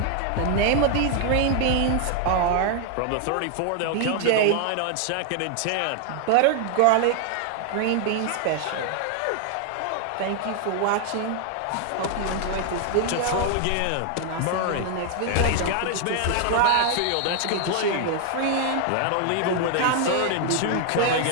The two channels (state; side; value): different; both; correlation 0.00